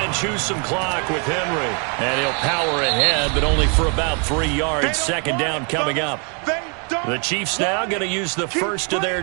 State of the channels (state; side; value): quieter; left; 37.1 dB